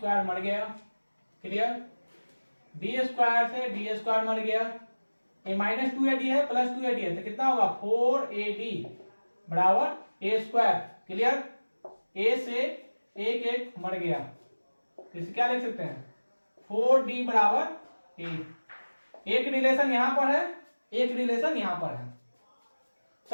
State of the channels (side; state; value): both; inverted; correlation -1.00